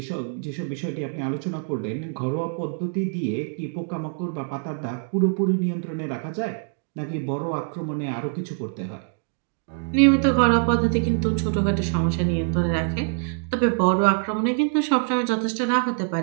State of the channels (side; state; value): left; silent; 62 dB below the other